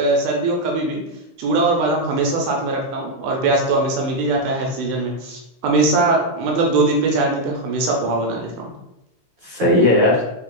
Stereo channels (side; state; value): left; late; 16 ms